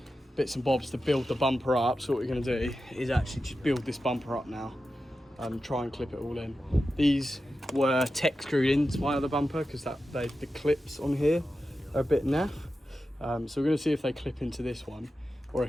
bits and bobs to build the bumper up. So what we're going to do is actually just build this bumper up now and try and clip it all in. These were tech screwed into my other bumper because the clips on here are a bit naff. So we're going to see if they clip into this one, or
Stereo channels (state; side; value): normal; both; correlation 0.92